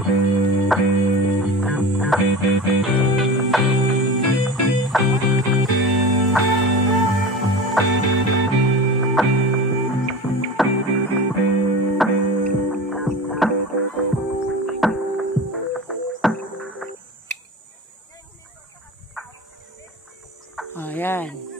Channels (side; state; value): both; normal; correlation 0.31